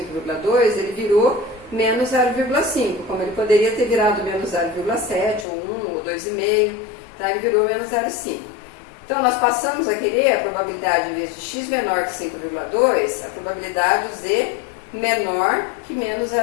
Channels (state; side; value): drops out; right; at 5.5 s